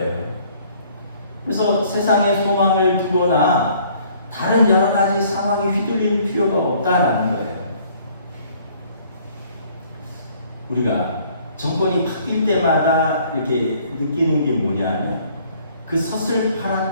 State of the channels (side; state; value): both; inverted; correlation -0.59